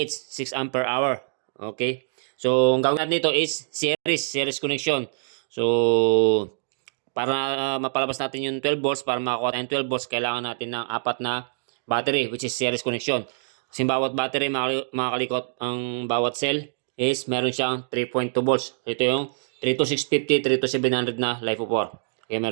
6 ampere hour. Okay? So, ang gawin natin dito is series connection. So, para mapalabas natin yung 12 volts, para makakuha tayong 12 volts, kailangan natin ng apat na battery, which is series connection. Kasi bawat battery, mga kalikot, ang bawat cell is meron siyang 3.2 volts. Ito yung 32650, 32700 na LiFeO4. Okay,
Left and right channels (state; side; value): silent; left; digital silence